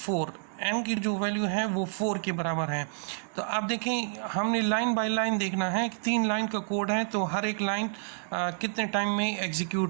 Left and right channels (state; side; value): silent; left; 58 dB below the other